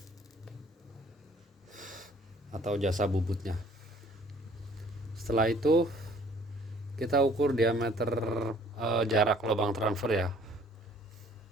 atau jasa bubutnya. Setelah itu kita ukur diameter jarak lubang transfer ya,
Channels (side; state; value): both; normal; correlation 0.57